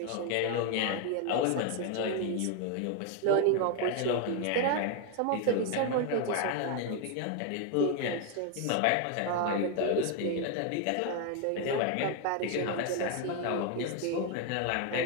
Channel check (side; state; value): both; different; correlation 0.01